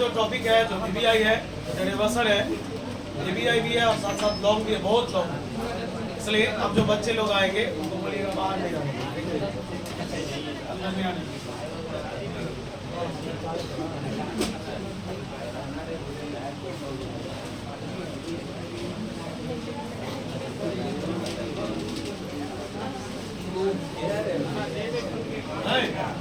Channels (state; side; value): identical; both; correlation 1.00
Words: टॉपिक है जो ईबीआई है, रिवर्सल है, ईबीआई भी है और साथ साथ लॉन्ग भी है, बहुत लॉन्ग है। इसलिए अब जो बच्चे लोग आएंगे उनको बोलिएगा बाहर नहीं आएंगे, अंदर नहीं आने।